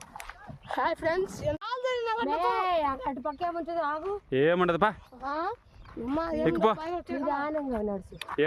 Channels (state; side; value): identical; both; correlation 1.00